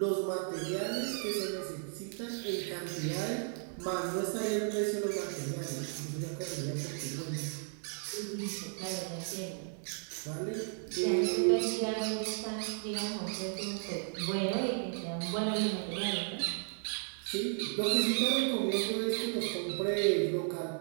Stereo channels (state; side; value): silent; left; 55 dB below the other